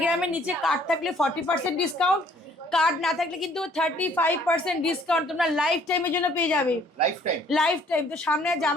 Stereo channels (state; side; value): normal; both; correlation 0.60